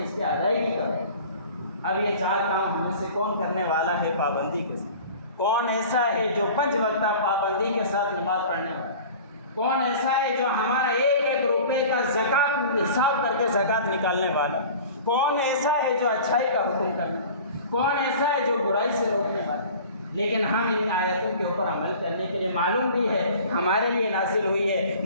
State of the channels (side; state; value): both; inverted; correlation -0.42